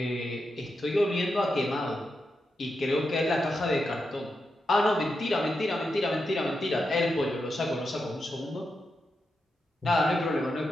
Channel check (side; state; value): both; normal; correlation 0.87